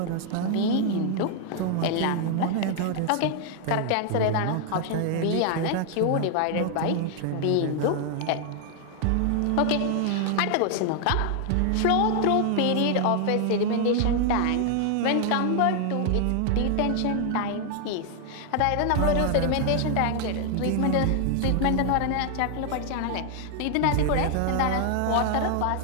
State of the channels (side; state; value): both; different; correlation 0.00